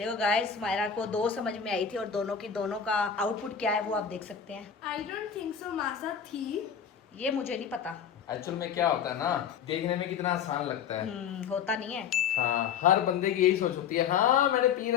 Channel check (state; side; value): quieter; right; 7.6 dB